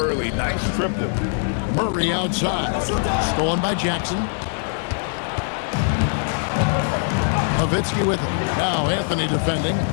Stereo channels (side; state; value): right; silent; 64 dB below the other